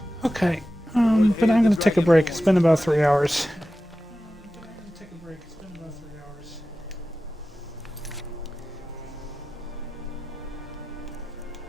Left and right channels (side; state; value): both; normal; correlation 0.94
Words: Okay, but I'm going to take a break. It's been about 3 hours.